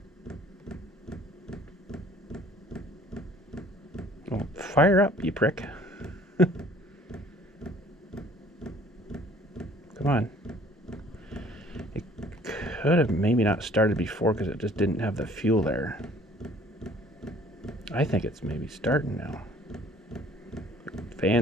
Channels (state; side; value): normal; both; correlation 0.55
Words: Oh, fire up, you prick. Come on. It could have maybe not started before because it just didn't have the fuel there. I think it's maybe starting now.